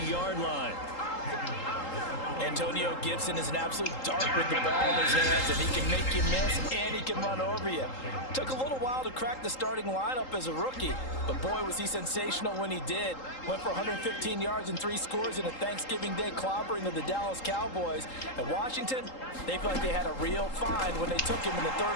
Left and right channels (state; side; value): late; right; 3.8 ms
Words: line. Antonio Gibson is an absolute dart with the ball in his hands, and he can make you miss, and he can run over you. Took a little while to crack the starting lineup as a rookie, but boy, was he sensational when he did. Went for 115 yards and 3 scores in a Thanksgiving Day clobbering of the Dallas Cowboys. At Washington, they felt like they had a real find when they took him in the